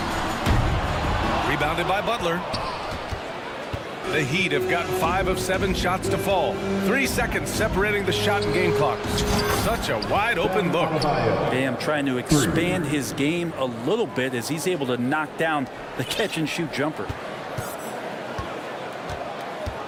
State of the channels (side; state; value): both; identical; correlation 1.00